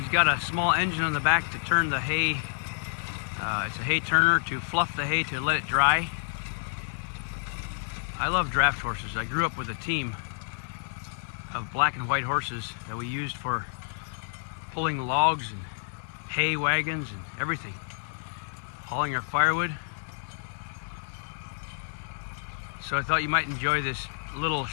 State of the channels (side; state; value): right; silent; digital silence